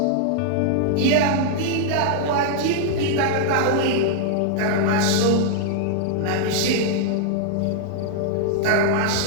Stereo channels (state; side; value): different; both; correlation -0.01